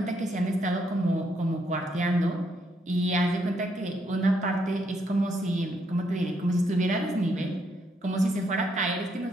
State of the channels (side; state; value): both; normal; correlation 0.75